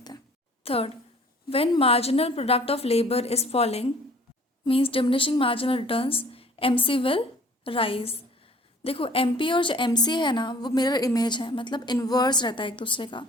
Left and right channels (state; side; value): normal; both; correlation 0.52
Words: हैं. Third, when marginal product of labour is falling means diminishing marginal returns, MC will rise. देखो एमपी और जो एमसी है ना वो मिरर इमेज है, मतलब इन्वर्स रहता है एक दूसरे का.